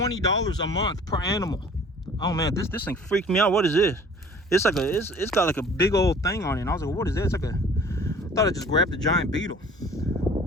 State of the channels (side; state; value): both; normal; correlation 0.49